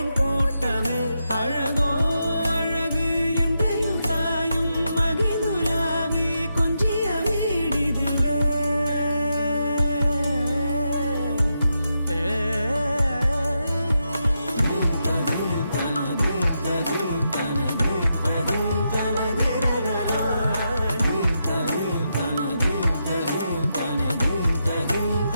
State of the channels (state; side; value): inverted; both; correlation -0.85